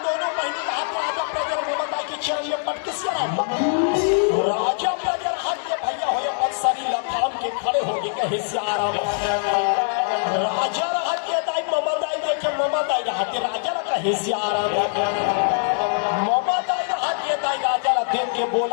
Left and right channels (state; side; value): silent; right; digital silence